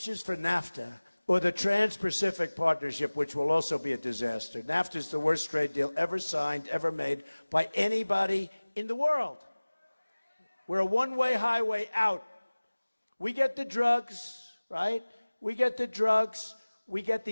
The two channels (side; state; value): both; inverted; correlation -1.00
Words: for NAFTA, or the Trans-Pacific Partnership, which will also be a disaster. NAFTA is the worst trade deal ever signed, ever made by anybody in the world. We're a one-way highway out. We get the drugs, right? We get the drugs. We get